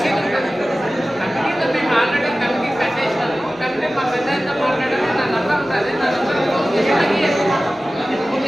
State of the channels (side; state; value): both; normal; correlation 0.96